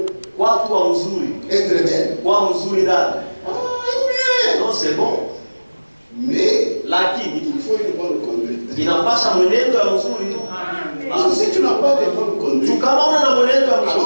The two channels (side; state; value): both; inverted; correlation -1.00